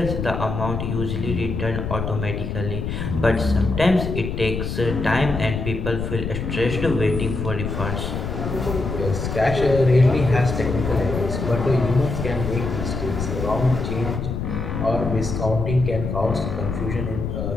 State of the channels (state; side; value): noise; left; rumble, 4 dB below the sound